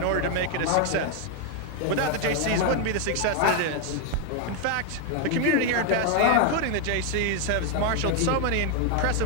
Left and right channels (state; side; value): different; both; correlation 0.00